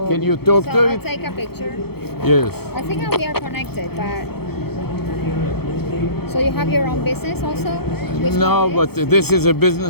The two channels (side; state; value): right; late; 0.96 ms